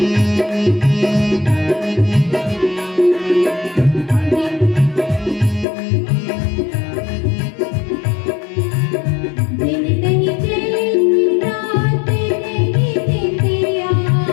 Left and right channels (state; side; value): drops out; right; at 5.7 s